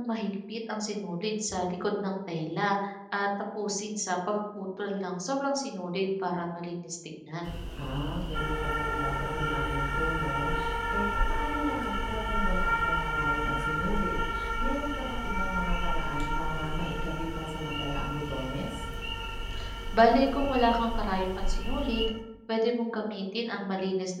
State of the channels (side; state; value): both; identical; correlation 1.00